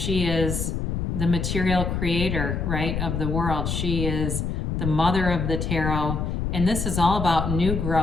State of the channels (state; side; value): noise; left; rumble, 1 dB below the sound